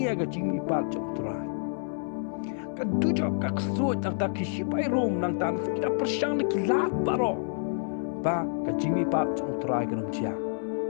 ga jing mi pat jong trai ka dujo ka so tang ta kishipai rom nang tan kita persyang kila baro ba ka jing mi pat jong trai ga rom chia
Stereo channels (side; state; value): right; silent; 59 dB below the other